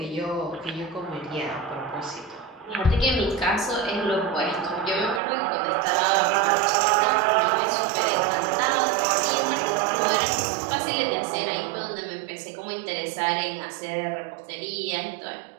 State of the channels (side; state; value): left; drops out; at 5.2 s